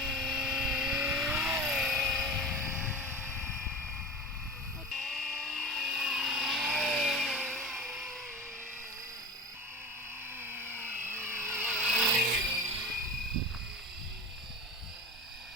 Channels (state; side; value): normal; both; correlation 0.31